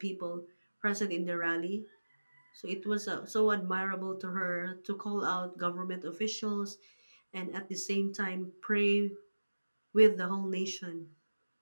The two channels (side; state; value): both; inverted; correlation -1.00